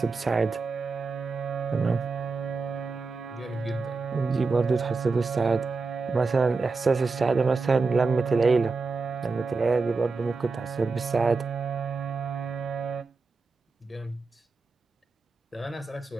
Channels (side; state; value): left; quieter; 4.2 dB